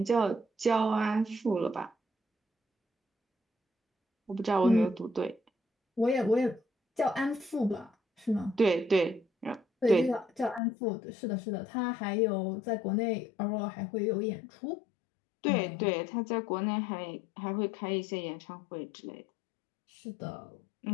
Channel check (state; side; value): drops out; right; at 10.6 s